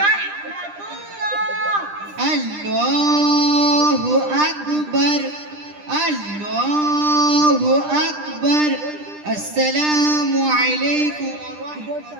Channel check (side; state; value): left; late; 9.9 ms